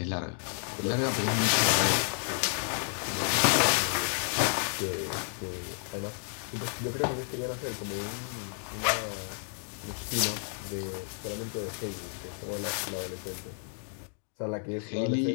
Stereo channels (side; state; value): right; silent; 57 dB below the other